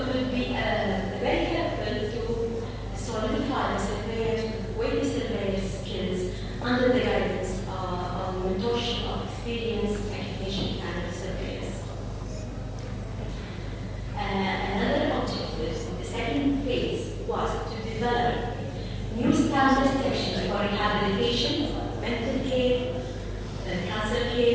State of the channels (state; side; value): identical; both; correlation 1.00